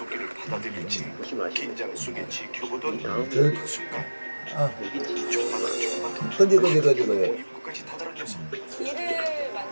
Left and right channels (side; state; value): both; inverted; correlation -1.00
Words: 받아들일지 보시면 아시죠? 긴장 속에 지켜보던 이 다음 그 순간 아, 여기 지금 조금만 그지. 입구까지 다다른 녀석 길을